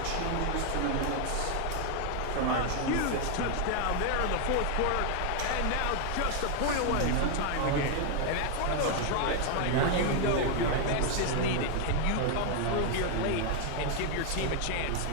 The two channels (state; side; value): different; both; correlation 0.00